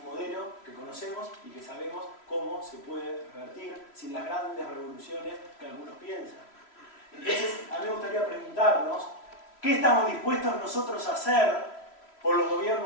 modelo que conocemos y que sabemos cómo se puede revertir sin las grandes revoluciones que algunos piensan. Entonces, a mí me gustaría preguntarnos, ¿qué estamos dispuestos nosotros a hacer por los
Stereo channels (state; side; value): late; right; 3.1 ms